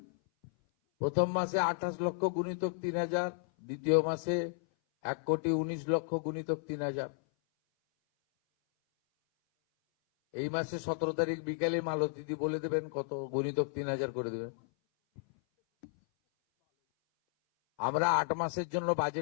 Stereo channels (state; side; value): silent; right; 56 dB below the other